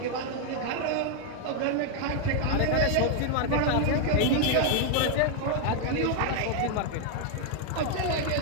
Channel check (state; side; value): different; both; correlation 0.00